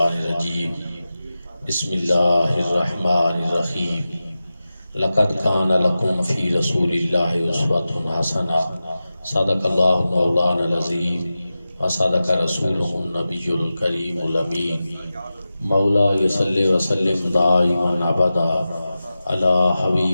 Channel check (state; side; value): inverted; both; correlation -0.94